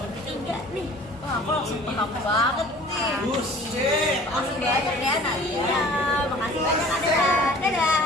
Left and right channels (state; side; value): normal; both; correlation 0.48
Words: tiga nih? Wah, aku langsung paham banget nih. Makasih banyak ya Nadia. Makasih banyak